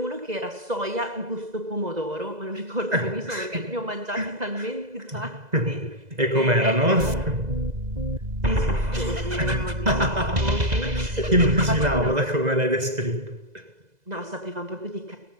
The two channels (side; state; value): left; late; 2.0 ms